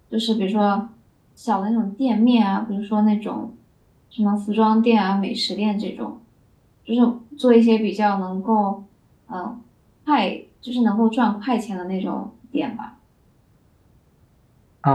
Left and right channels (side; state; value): both; identical; correlation 1.00